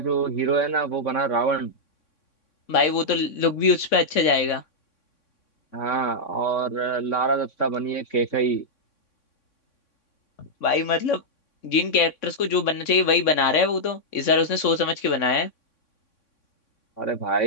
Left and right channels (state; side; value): late; right; 3.6 ms